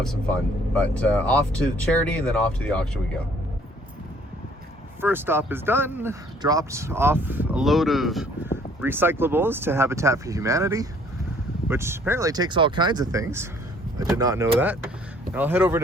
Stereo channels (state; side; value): normal; both; correlation 0.59